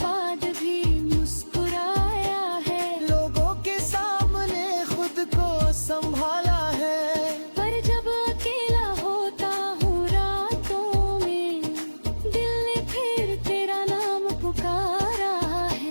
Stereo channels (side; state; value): both; inverted; correlation -1.00